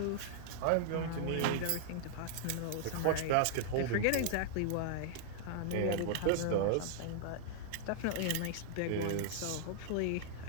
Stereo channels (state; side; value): different; both; correlation -0.01